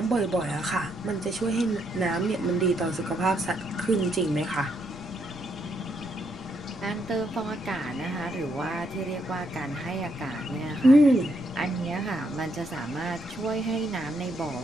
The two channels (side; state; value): left; noise; rumble, 19 dB below the sound